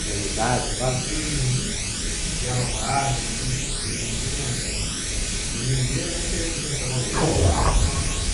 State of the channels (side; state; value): both; identical; correlation 1.00